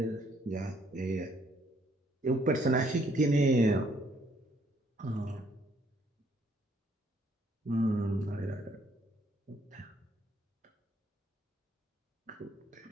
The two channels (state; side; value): normal; both; correlation 0.67